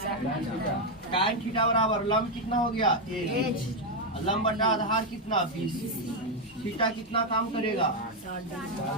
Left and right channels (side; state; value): both; normal; correlation 0.03